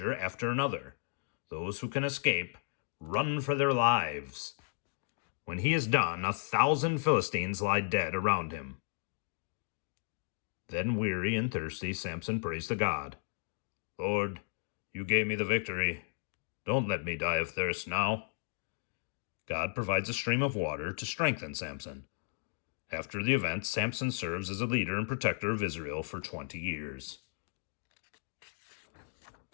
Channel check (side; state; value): right; silent; digital silence